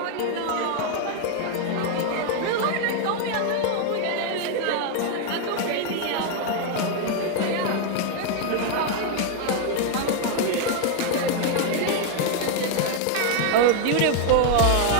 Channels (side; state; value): both; different; correlation 0.00